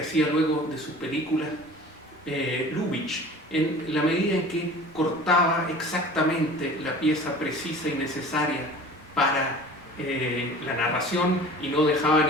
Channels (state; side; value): normal; both; correlation 0.42